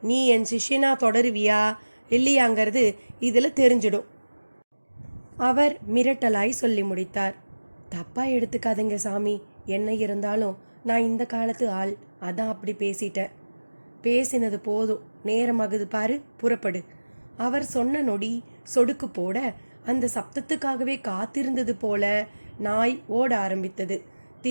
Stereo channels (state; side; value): inverted; both; correlation -1.00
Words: நீ என் சிஷ்யனா தொடருவியா இல்லையாங்கிறது இதில் தெரிஞ்சிடும். அவர் மிரட்டலாய் சொல்லி முடித்தார். தப்பா எடுத்துக்காதீங்க சாமி, என்ன இருந்தாலும் நான் இந்த காலத்து ஆள், அதான் அப்படி பேசிட்டேன். பேசினது போதும், நேரமாகுது பாரு, புறப்படு. அவர் சொன்ன நொடி சொடுக்கு போட அந்த சப்தத்துக்காகவே காத்திருந்தது போல நாய் ஓட ஆரம்பித்தது.